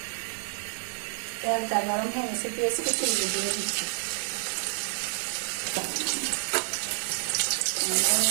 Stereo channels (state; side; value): silent; left; 59 dB below the other